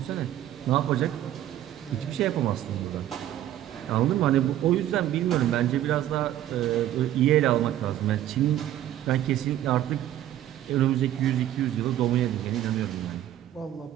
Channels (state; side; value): quieter; left; 12.5 dB